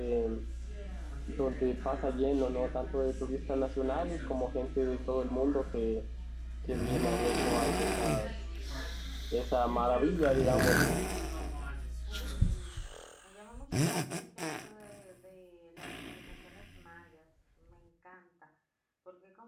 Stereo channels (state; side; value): identical; both; correlation 1.00